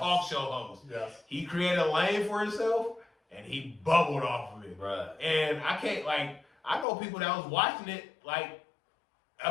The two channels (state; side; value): drops out; right; at 6.9 s